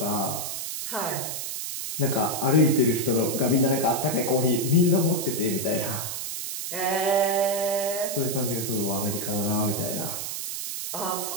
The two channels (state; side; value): noise; right; hiss, 5 dB below the sound